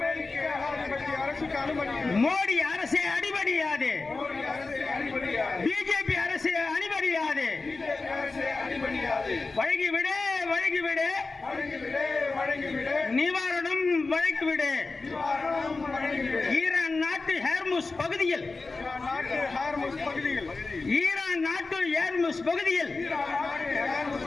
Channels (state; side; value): quieter; right; 3.8 dB